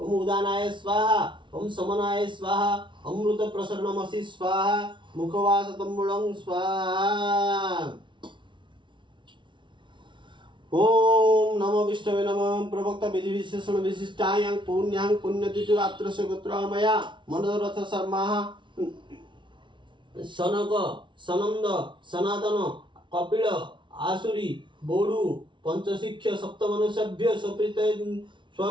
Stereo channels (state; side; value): late; left; 0.24 ms